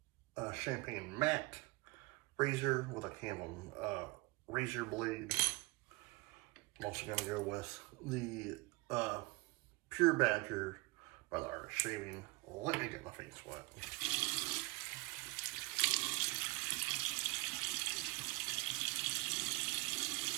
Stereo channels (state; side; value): quieter; left; 25.8 dB